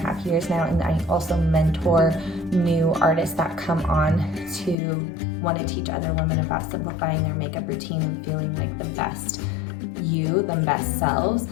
years now, and I also mentor new artists that come on to want to teach other women about simplifying their makeup routine and feeling like the best best selves.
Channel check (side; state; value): right; drops out; at 4.8 s